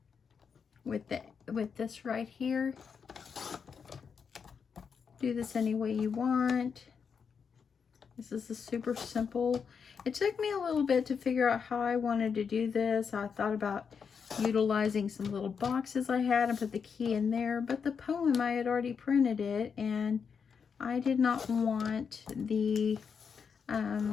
with with this right here. Do this any way you want. This is a super simple. It took me a little bit to figure out how I wanted to do this. I thought about utilizing some little boxes I had and put the key in there, but the poem, I had already printed it, and I did not want the, I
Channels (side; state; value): right; quieter; 6.3 dB